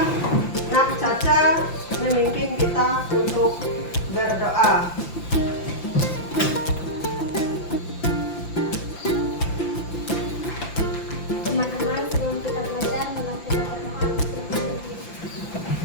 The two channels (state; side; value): late; right; 5.9 ms